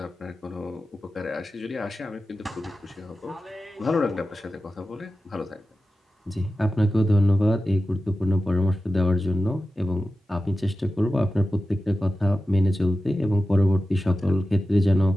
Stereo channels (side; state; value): both; normal; correlation 0.93